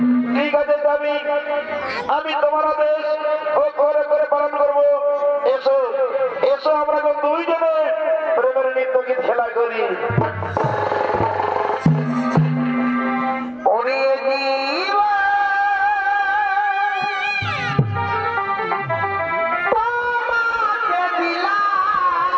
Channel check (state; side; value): identical; both; correlation 1.00